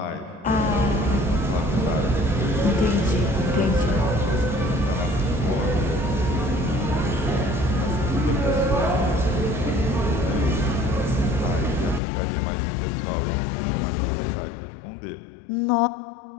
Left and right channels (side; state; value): right; drops out; at 12.0 s